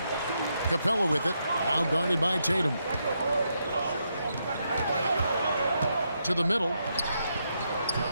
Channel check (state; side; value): inverted; both; correlation -0.80